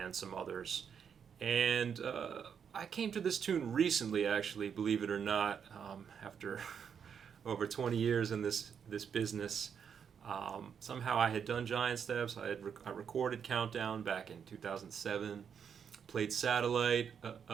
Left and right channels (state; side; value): quieter; left; 7.4 dB